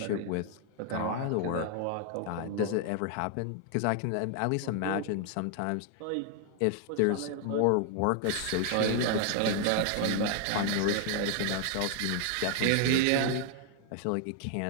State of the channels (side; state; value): both; different; correlation 0.00